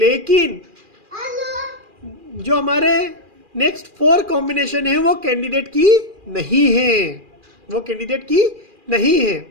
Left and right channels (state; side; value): late; left; 2.4 ms